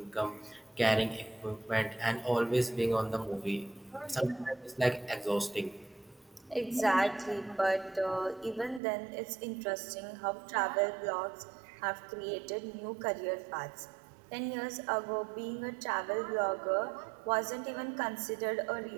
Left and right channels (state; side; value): drops out; left; at 8.8 s